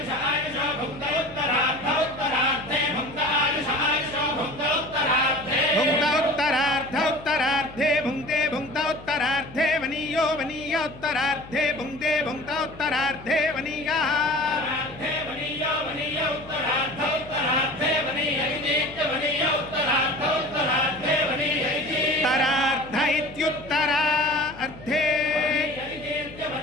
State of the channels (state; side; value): noise; left; hum, 18 dB below the sound